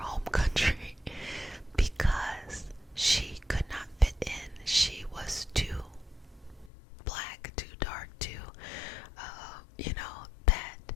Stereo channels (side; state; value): right; drops out; at 6.7 s